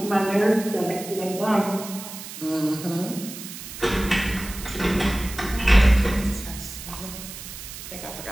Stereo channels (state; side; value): noise; right; hiss, 12 dB below the sound